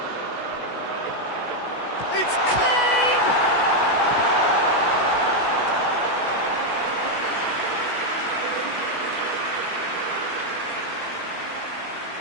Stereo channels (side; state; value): right; late; 16 ms